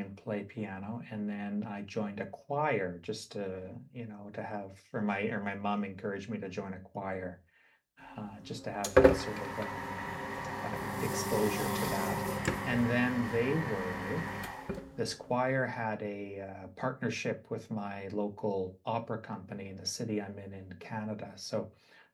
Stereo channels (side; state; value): both; identical; correlation 1.00